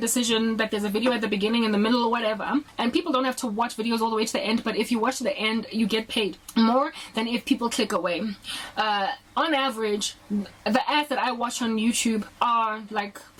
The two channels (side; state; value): both; identical; correlation 1.00